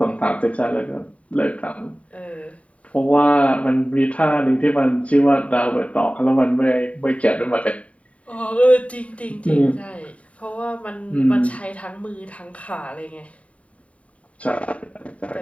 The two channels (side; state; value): right; late; 0.066 ms